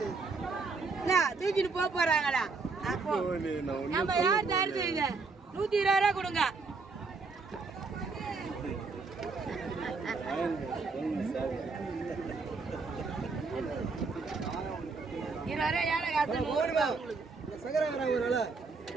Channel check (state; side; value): quieter; left; 4.3 dB